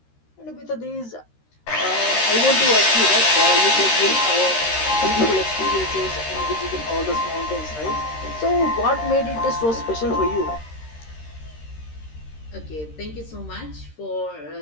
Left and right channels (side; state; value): right; late; 13 ms